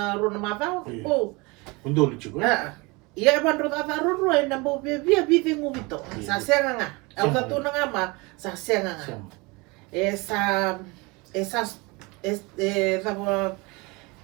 ro na mata Undo lucu kan? Iya ban ro ta ro na bo bia bide ngubito sa senga nga au ta tu nga ma sa senga nga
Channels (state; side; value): quieter; left; 26.1 dB